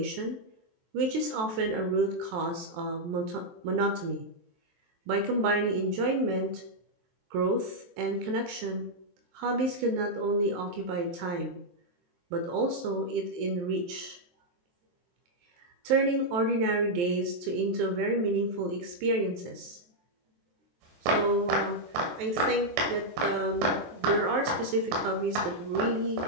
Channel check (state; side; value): late; left; 23 ms